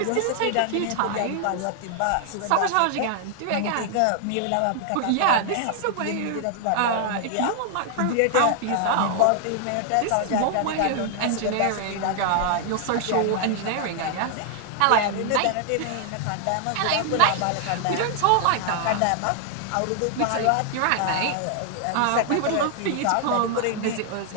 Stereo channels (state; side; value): different; both; correlation 0.00